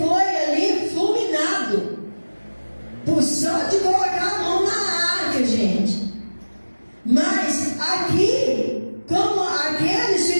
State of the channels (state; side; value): inverted; both; correlation -1.00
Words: ali fulminado, por só de colocar a mão na arca, gente. Mas aqui, como aqueles